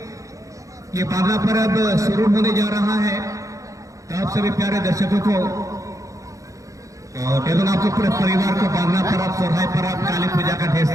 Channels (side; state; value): left; late; 0.16 ms